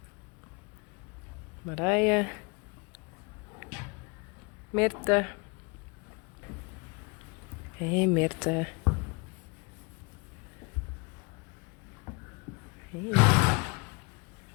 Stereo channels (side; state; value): right; quieter; 29.9 dB